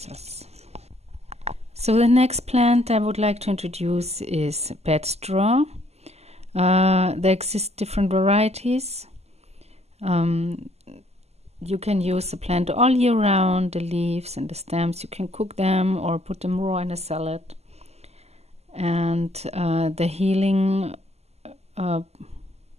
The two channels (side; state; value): left; late; 0.30 ms